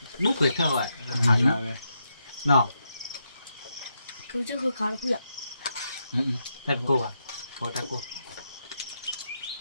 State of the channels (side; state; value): both; inverted; correlation -0.82